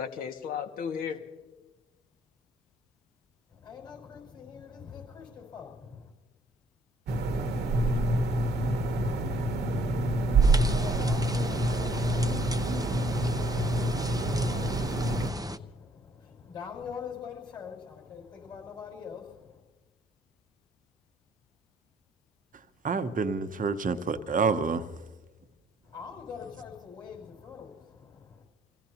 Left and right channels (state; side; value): normal; both; correlation 0.64